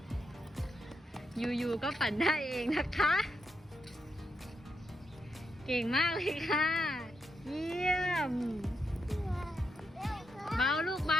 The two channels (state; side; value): normal; both; correlation 0.83